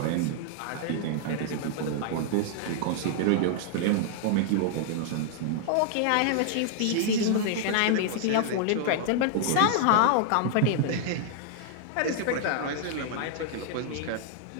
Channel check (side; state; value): both; different; correlation -0.01